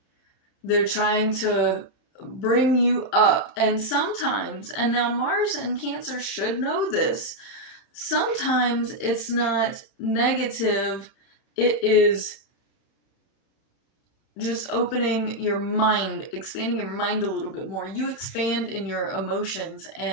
They're trying to bring you up. And sometimes, and now Mars and Cancer should know this, sometimes it's not negative, it is just opening your mind, expanding your mind a little bit more. You expand in your emotions,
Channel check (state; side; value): late; right; 30 ms